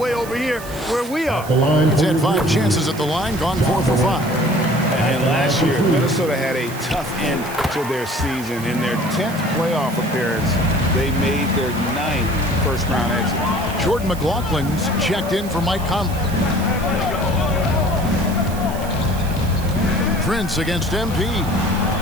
over here where we are. He's had 5 chances at the line, gone 4 for 5. And last year, Minnesota had a tough end to their season. In their 10th playoff appearance, they made their 9th first-round exit. Jordan McLaughlin's checked in for Mike Conley. Prince against MP.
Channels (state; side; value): noise; right; hiss, 16 dB below the sound